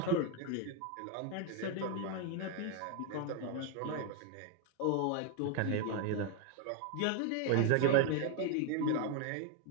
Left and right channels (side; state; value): both; different; correlation 0.01